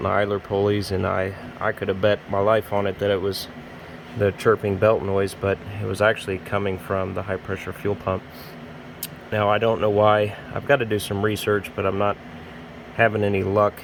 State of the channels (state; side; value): identical; both; correlation 1.00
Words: idler pulleys, and I could have bet my life on it that it was the chirping belt noise, but it was actually coming from the high pressure fuel pump. Now I don't know why. I've got to do some research, but I'm not having any luck